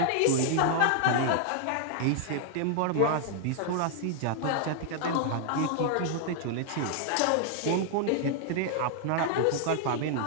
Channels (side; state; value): both; different; correlation -0.01